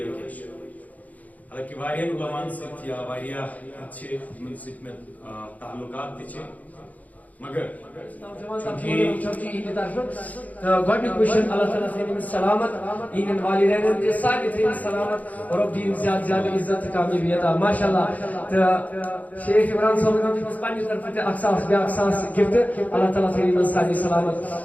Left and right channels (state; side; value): late; right; 0.076 ms